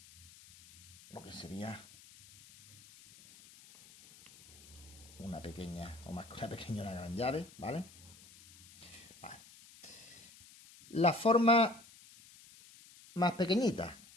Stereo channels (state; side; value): noise; left; hiss, 22 dB below the sound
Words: lo que sería una pequeña, o más que una pequeña, una gran llave, ¿vale? Vale. La forma más pequeñita,